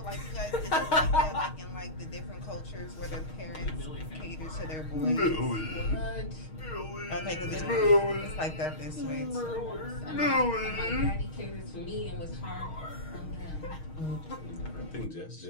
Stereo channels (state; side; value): late; right; 6.4 ms